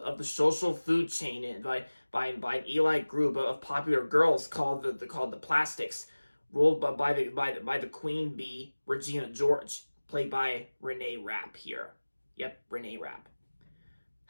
the social food chain by an elite group of popular girls called the Plastics, ruled by the queen bee Regina George, played by Renee Rapp here. Yep, Renee Rapp.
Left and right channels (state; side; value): inverted; both; correlation -1.00